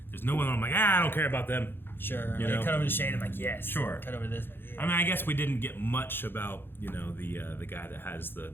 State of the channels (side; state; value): right; late; 0.10 ms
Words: There's no one I'm like, I don't care about them. Sure. You They know? cut over to Shade. I'm like, yes. Sure. Cut over to this. I'm like, yeah. I mean, I guess we didn't get much about, the guy that has the